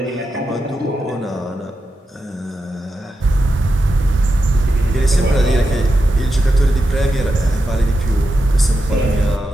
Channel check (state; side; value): normal; both; correlation 0.88